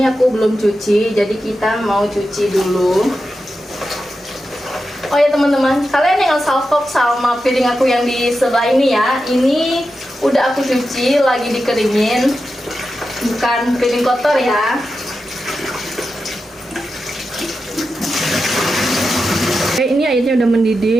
aku belum cuci, jadi kita mau cuci dulu. Oh ya teman-teman, kalian jangan salfok sama piring aku yang di sebelah ini ya. Ini udah aku cuci, lagi dikeringin, bukan piring kotor ya. Oke, ini airnya udah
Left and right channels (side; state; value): both; normal; correlation 0.90